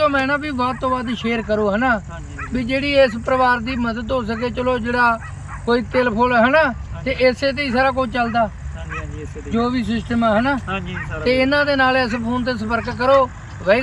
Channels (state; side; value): identical; both; correlation 1.00